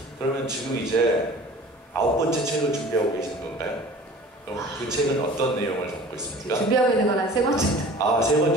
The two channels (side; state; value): both; normal; correlation 0.43